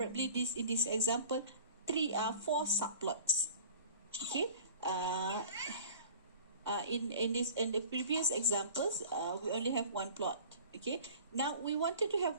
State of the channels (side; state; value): both; inverted; correlation -0.43